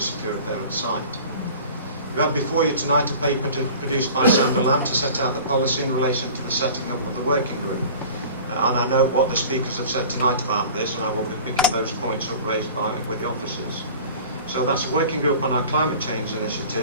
a parent site. We have before you tonight a paper produced by Sandra Lamb to set out the policy in relation to the setting up of the working group. And I note what the speakers have said tonight about this, and I will be picking those points up raised with the officers. So that's a working group on our climate change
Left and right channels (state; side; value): inverted; both; correlation -0.42